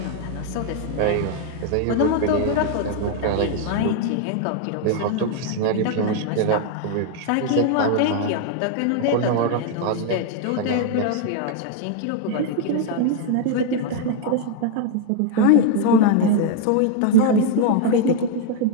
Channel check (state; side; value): different; both; correlation 0.00